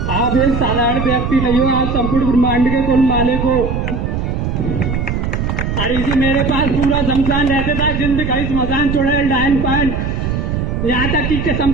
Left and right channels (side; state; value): right; noise; rumble, 2 dB below the sound